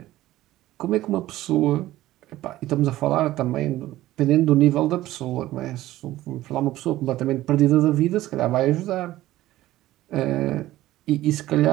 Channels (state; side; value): quieter; left; 15.6 dB